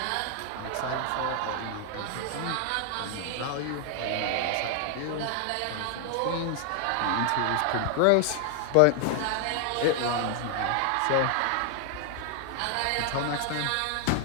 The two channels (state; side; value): different; both; correlation 0.00